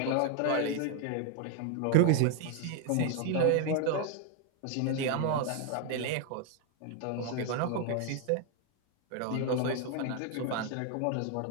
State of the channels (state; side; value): different; both; correlation 0.00